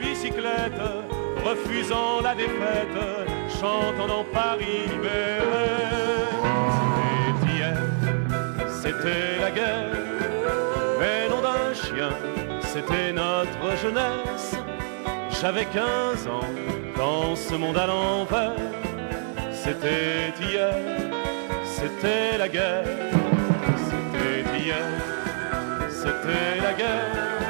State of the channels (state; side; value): silent; left; 61 dB below the other